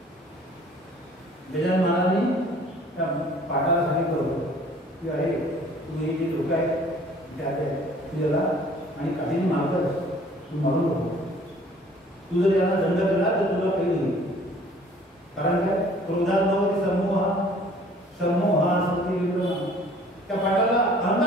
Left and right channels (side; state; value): both; normal; correlation 0.53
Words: गजानन महाराजांनी त्या पाठाला सांगितलं की अरे तुम्ही हे जे लोक आहेत त्याला आणि काठीने मारतात तू मारू नको. तू जर याला दंड केला तर तुला काही होईल. कारण काय क्रोधात नव्हती समूहा स्मृती विभ्रमा. त्या पाठाला